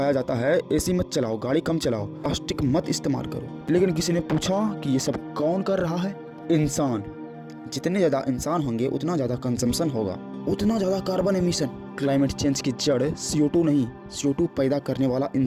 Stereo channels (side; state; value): both; identical; correlation 1.00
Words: जाता है एसी मत चलाओ, गाड़ी कम चलाओ, प्लास्टिक मत इस्तेमाल करो। लेकिन किसी ने पूछा कि ये सब कौन कर रहा है? इंसान। जितने ज्यादा इंसान होंगे उतना ज्यादा कंजम्पशन होगा, उतना ज्यादा कार्बन एमिशन। क्लाइमेट चेंज की जड़ CO2 नहीं, CO2 पैदा करने वाला